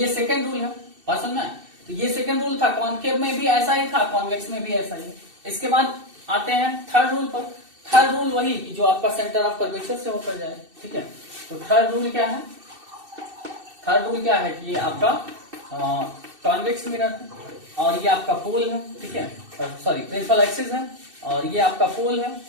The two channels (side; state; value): left; late; 2.6 ms